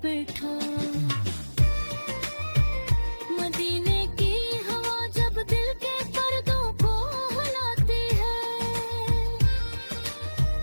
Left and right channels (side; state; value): both; inverted; correlation -1.00